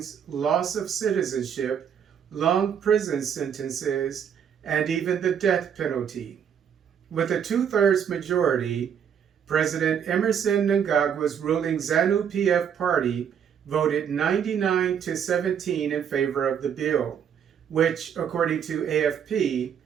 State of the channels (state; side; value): quieter; left; 8.2 dB